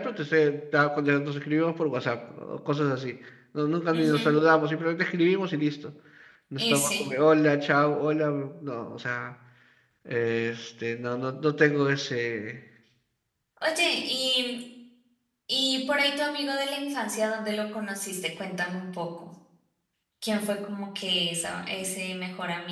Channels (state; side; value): identical; both; correlation 1.00